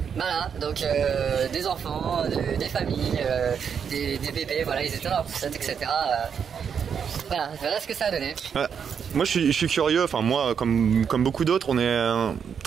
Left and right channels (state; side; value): quieter; left; 7.2 dB